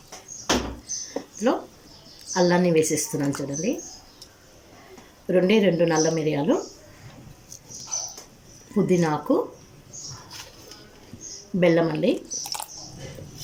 ఇందులో అల్లాన్ని వేసేస్తున్నాను చూడండి. రెండు నల్ల మిరియాలు, పుదీనాకు, బెల్లం అండి.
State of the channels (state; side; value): identical; both; correlation 1.00